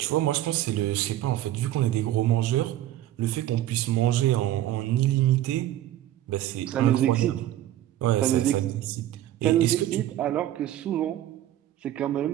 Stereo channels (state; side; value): quieter; left; 13.3 dB